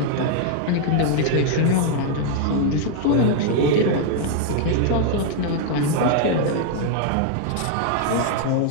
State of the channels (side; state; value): both; different; correlation 0.00